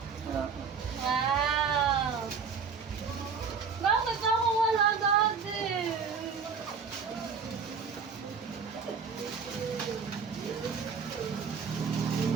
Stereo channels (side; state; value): left; quieter; 5.7 dB